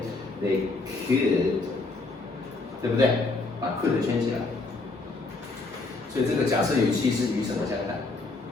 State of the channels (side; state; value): right; quieter; 3.4 dB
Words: ，they could， 对不对？把 could 圈起来。所以这个假设语气是与什么相反？